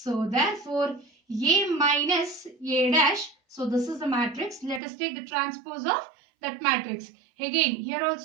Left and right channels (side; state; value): left; drops out; at 4.8 s